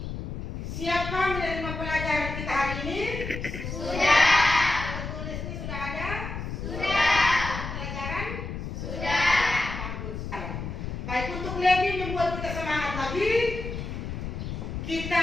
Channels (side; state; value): left; noise; rumble, 6 dB below the sound